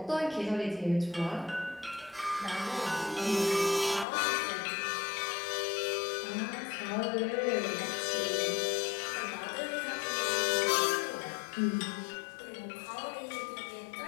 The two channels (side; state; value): right; drops out; at 4.0 s